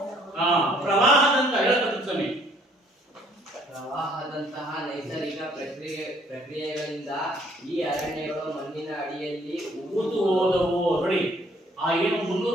ಪ್ರವಾಹದಂತಹ ಹೇಳ್ತಕ್ಕಂಥ ಸಮಯ. ಪ್ರವಾಹದಂತಹ ನೈಸರ್ಗಿಕ ಪ್ರಕ್ರಿಯೆಗಳಿಂದ ಈ ಅರಣ್ಯಗಳು ಮಣ್ಣಿನ ಅಡಿಯಲ್ಲಿ ಊತು ಹೋದವು. ನೋಡಿ, ಆ ಏನು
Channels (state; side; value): normal; both; correlation 0.62